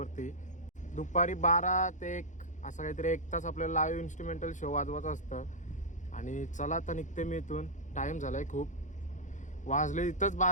दुपारी 12 ते 1 असं काहीतरी 1 तास आपल्याला लाईव्ह इन्स्ट्रुमेंटल शो वाजवायचं असतं. आणि चला आता निघते मी इथून. टाईम झाला आहे खूप, वाजले इथंच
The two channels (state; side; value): late; right; 0.36 ms